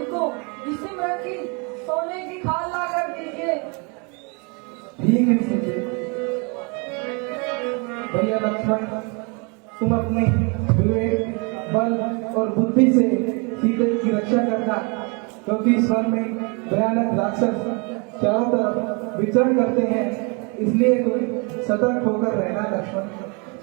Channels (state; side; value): quieter; left; 32.5 dB